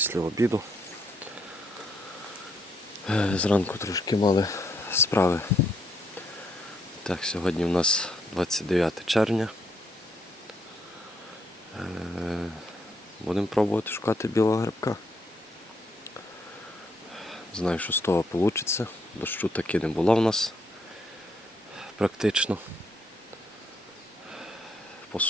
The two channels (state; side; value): normal; both; correlation 0.74